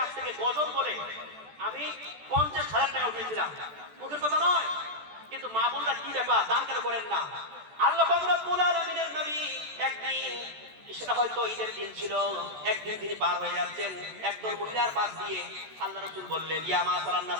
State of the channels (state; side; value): late; left; 14 ms